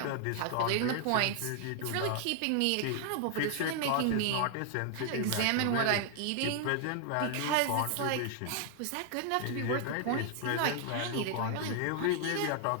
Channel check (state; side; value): different; both; correlation 0.00